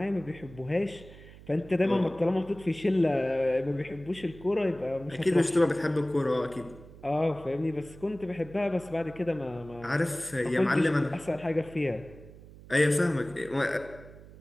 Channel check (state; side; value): noise; right; hum, 19 dB below the sound